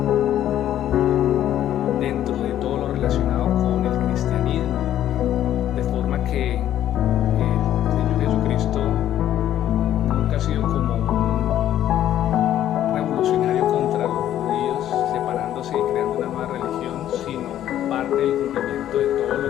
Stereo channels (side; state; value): right; quieter; 11.7 dB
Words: dentro de todo lo relacionado con el cristianismo, de forma que el Señor Jesucristo nunca ha sido como un revolucionario contra los judíos, separándose y creando una nueva religión, sino parte del cumplimiento de todo lo